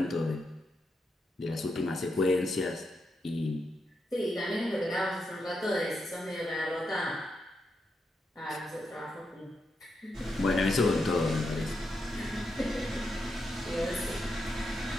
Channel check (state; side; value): normal; both; correlation 0.84